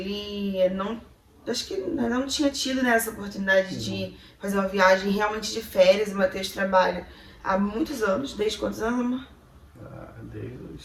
não... Acho que não tinha tido, né, essa oportunidade de fazer uma viagem realmente de férias. O Matheus trabalha há muitos anos. Desde quantos anos, amor? Desde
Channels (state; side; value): identical; both; correlation 1.00